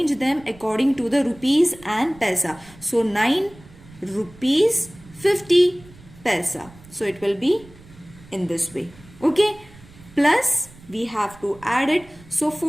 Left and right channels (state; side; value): noise; right; rumble, 23 dB below the sound